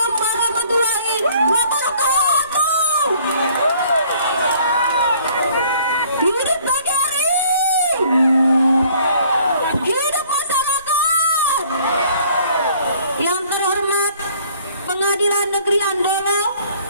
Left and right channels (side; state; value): both; inverted; correlation -0.58